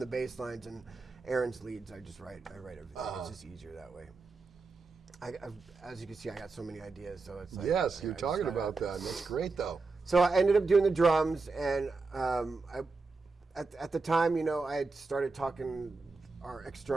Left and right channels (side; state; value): left; quieter; 4.0 dB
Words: bass lines and Aaron's leads, I write everything. It's just easier that way. As you can see, I got so many ideas, so it's yes, you're talking about that. That's great, though. So I ended up doing the drums, and at the time, I had started talking our